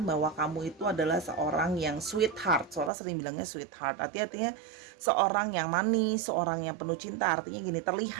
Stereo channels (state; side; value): drops out; left; at 2.9 s